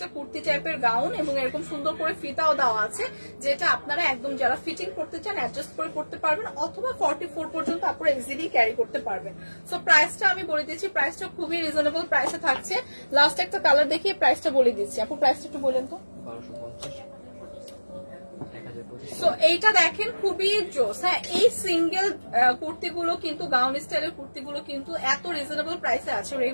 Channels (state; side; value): inverted; both; correlation -1.00